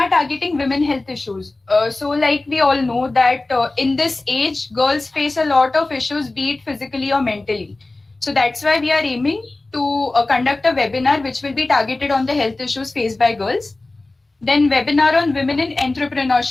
targeting women health issues. So like we all know that in this age, girls face a lot of issues, be it physically or mentally. So that's why we are aiming to conduct a webinar which will be targeted on the health issues faced by girls. Then webinar on women in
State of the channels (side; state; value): right; quieter; 3.1 dB